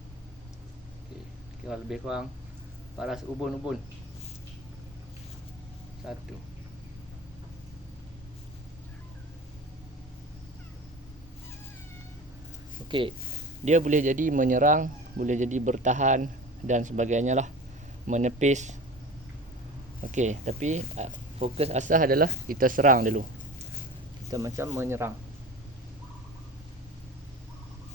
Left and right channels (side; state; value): both; normal; correlation 0.35